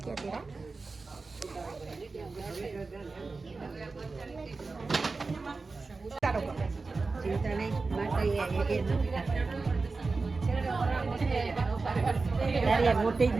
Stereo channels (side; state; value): left; quieter; 3.9 dB